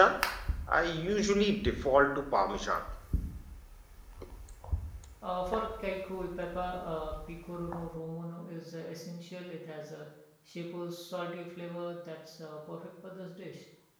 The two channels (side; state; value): both; identical; correlation 1.00